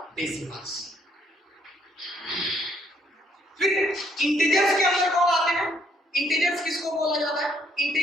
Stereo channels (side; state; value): both; normal; correlation 0.69